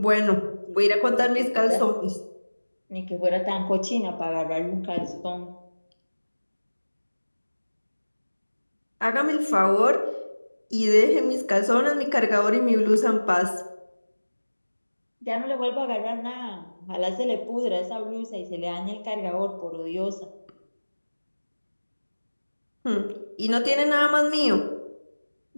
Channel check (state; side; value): inverted; both; correlation -1.00